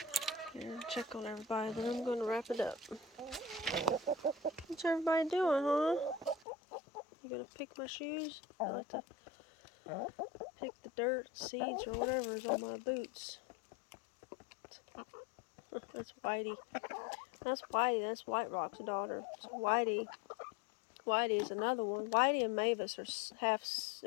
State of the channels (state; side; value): drops out; right; at 6.5 s